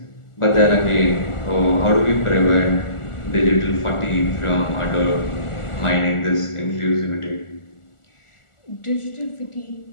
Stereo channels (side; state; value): right; late; 1.4 ms